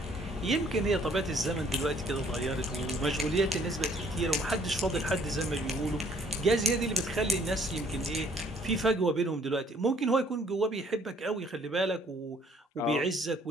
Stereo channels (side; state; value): both; normal; correlation 0.61